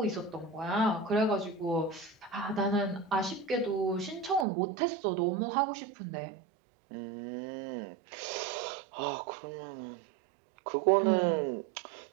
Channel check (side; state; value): left; drops out; at 4.5 s